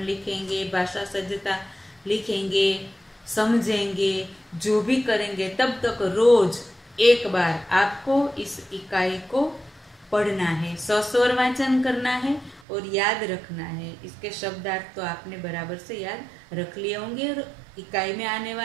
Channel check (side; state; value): left; drops out; at 12.6 s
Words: लिखेंगे, भाषा सज्जता लिखेंगे, समझेंगे, जो भी करेंगे, तब तक रोज एक बार आपको इस इकाई को पढ़ना है, सस्वर वाचन करना है और याद रखना है। इसके शब्दार्थ तो आपने बराबर से याद रख लिए होंगे। और इकाई में आने